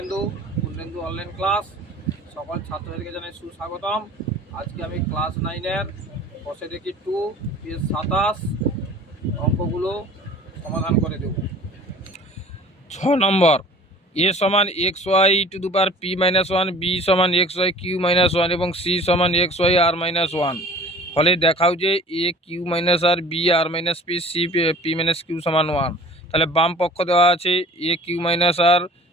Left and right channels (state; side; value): normal; both; correlation 0.46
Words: অনলাইন ক্লাস সকল ছাত্রদেরকে জানাই সুস্বাগতম। আজকে আমি ক্লাস 9-এর বসে দেখি 2 পেজ 27 অঙ্কগুলো সমাধান করে দেব। 6 নম্বর, a সমান xy to the power p-1, b সমান xy q-1 এবং c সমান xy r-1 হলে দেখাও যে a q-r, b r-p, c p-q সমান 1। তাহলে বাম পক্ষ দেওয়া আছে a q-r,